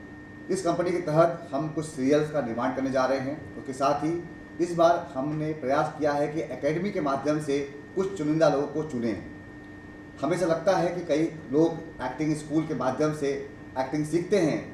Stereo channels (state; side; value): identical; both; correlation 1.00